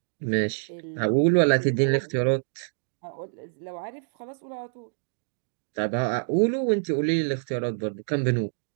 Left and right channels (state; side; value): silent; left; digital silence